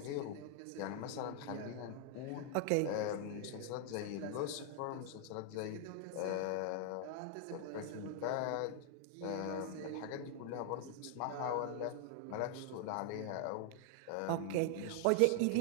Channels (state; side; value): different; both; correlation 0.00